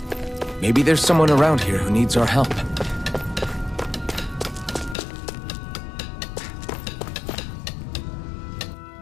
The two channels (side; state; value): right; drops out; at 5.0 s